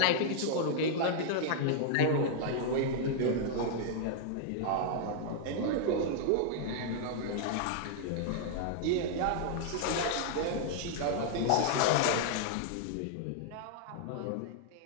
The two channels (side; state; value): both; different; correlation -0.01